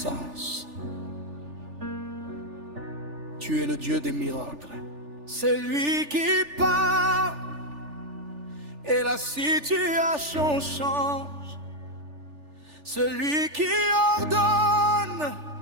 Tu es le Dieu des miracles. C'est lui qui parle et la situation change. Celui qui ordonne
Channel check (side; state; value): left; late; 3.4 ms